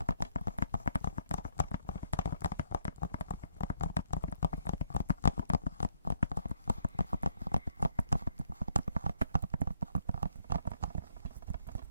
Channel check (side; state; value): both; inverted; correlation -0.69